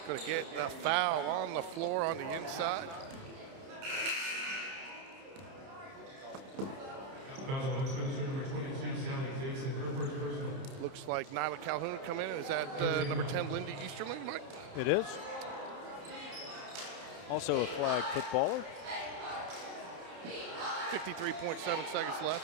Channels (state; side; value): late; left; 30 ms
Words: Gonna get a foul on the floor on the inside. Foul on Westminster, number 22, Sally Dixon, her first personal. Looks like Nyla Calhoun come in. Is that number 10, Lindy Easterling, Mike? It is. Also a flag footballer. 53.7 seconds